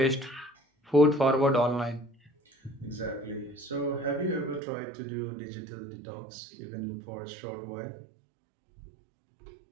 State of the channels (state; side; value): drops out; left; at 4.6 s